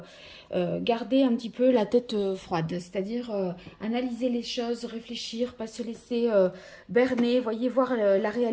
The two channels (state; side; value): identical; both; correlation 1.00